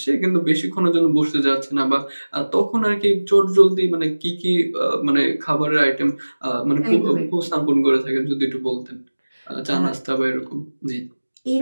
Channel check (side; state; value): both; inverted; correlation -1.00